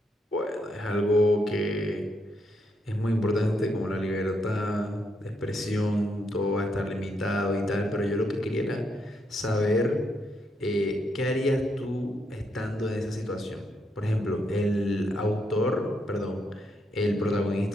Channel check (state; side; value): normal; both; correlation 0.78